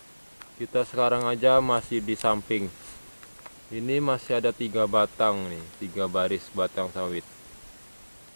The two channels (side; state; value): both; inverted; correlation -1.00